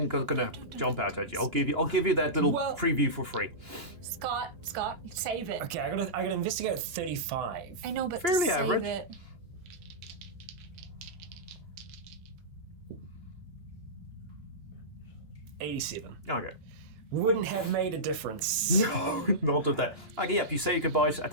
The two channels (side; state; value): left; late; 2.9 ms